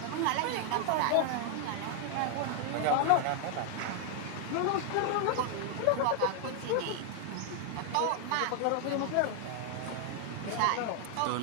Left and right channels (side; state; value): both; different; correlation 0.00